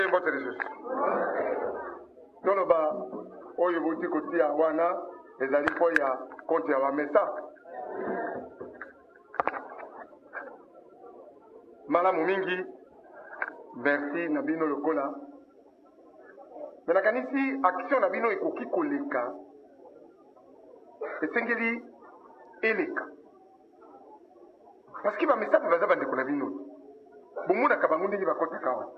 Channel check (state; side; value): identical; both; correlation 1.00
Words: mbote lisusu toloba oyo bouti kotia wana ezali mpo ya konte ya bamesa malamu mingi merci na bino lokola me nakanisi action na bino ekoki koleka esengeli eleka parce que bamesa mpe baza bandeko na bino bomonaka bango ndenge bakotaka awa